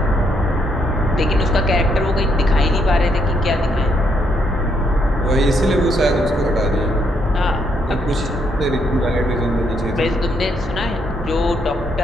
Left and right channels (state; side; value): normal; both; correlation 0.74